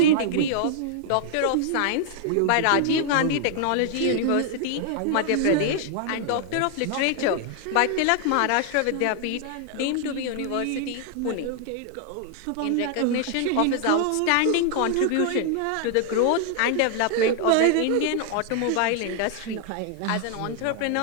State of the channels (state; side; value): different; both; correlation 0.00